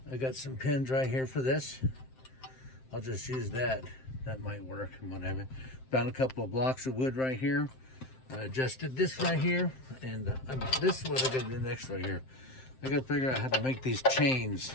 I got some pins right here for this. I'll just use that. That might work and whatever. Found a couple of blocks of wood right here. I adjusted this right here, and this is what I gotta do next right here. I gotta figure out how to make these chains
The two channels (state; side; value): late; right; 7.7 ms